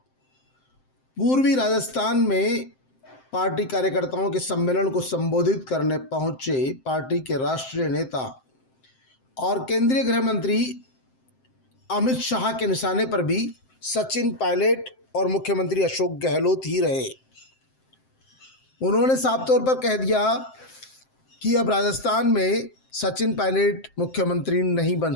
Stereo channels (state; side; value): late; right; 7.7 ms